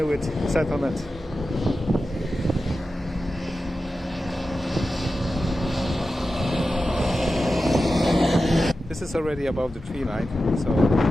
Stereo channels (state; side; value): normal; both; correlation 0.93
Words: settlement. This is already above the tree line, so